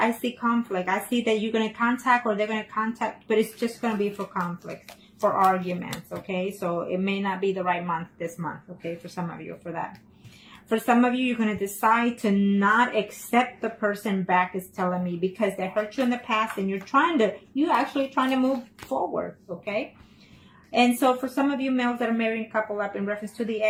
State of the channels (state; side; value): identical; both; correlation 1.00